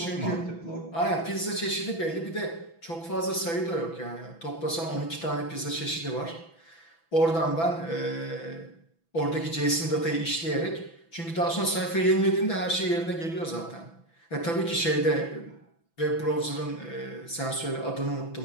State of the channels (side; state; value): right; late; 6.0 ms